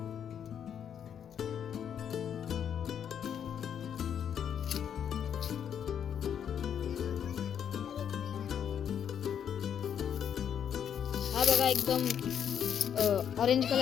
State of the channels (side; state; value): right; quieter; 8.6 dB